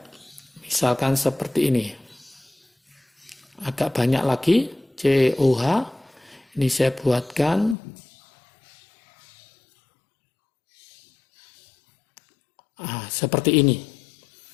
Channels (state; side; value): drops out; right; at 7.8 s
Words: Misalkan seperti ini. Agak banyak lagi. COH. Ini saya buatkan. Seperti ini.